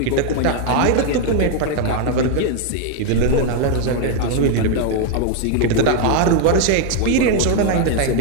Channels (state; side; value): different; both; correlation 0.00